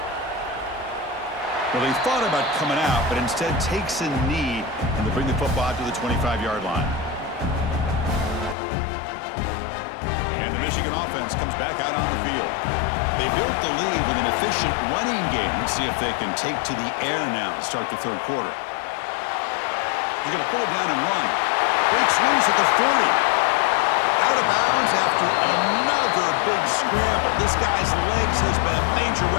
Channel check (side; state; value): right; drops out; at 8.6 s